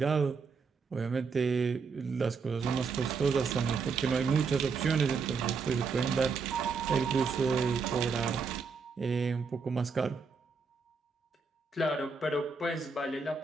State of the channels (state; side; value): quieter; left; 5.0 dB